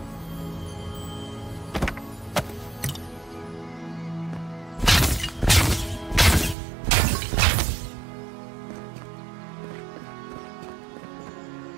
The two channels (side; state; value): left; drops out; at 6.6 s